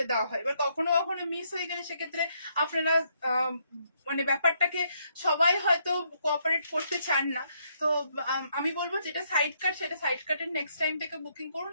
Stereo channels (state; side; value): inverted; both; correlation -0.73